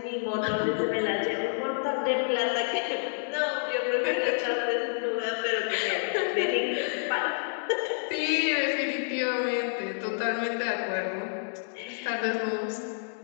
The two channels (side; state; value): right; silent; digital silence